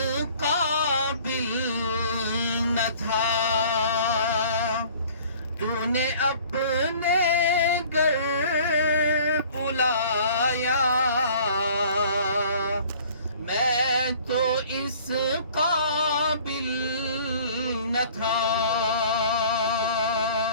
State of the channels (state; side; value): inverted; both; correlation -0.51